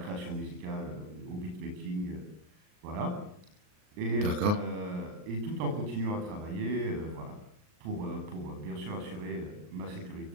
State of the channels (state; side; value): late; left; 39 ms